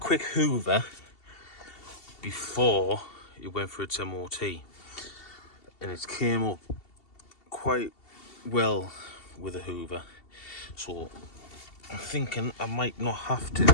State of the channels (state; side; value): late; right; 2.7 ms